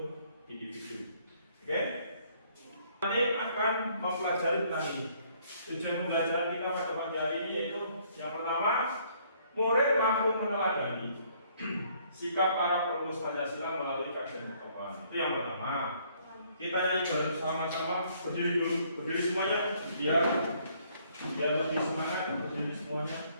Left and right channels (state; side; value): inverted; both; correlation -0.64